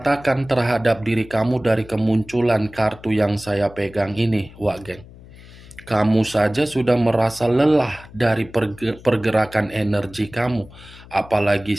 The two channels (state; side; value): noise; left; hum, 20 dB below the sound